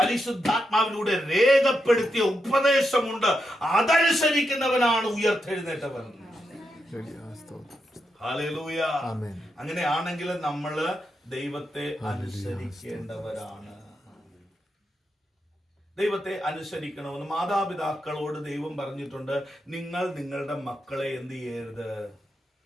രക്തത്തിലൂടെ രേഖപ്പെടുത്തിയ ഉപദേശമുണ്ട്. അതനുസരിക്കുന്നവനാണ് ഉയർത്തെഴുന്നേറ്റവൻ. ഹല്ലേലൂയ. അങ്ങനെയാണെങ്കിൽ നമ്മള് ദൈവത്തെ അനുസരിക്കേണ്ടവരാണ്. ദൈവത്തെ അനുസരിക്കണമെന്ന് മാതാപിതാക്കളോട് ദൈവം പറഞ്ഞിട്ടുണ്ട്. നിങ്ങൾ നിങ്ങളുടെ മക്കളെ എന്ത് ചെയ്യരുത്?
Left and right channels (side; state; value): both; normal; correlation 0.84